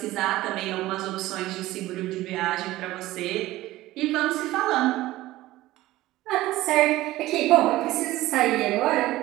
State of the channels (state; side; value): quieter; left; 16.7 dB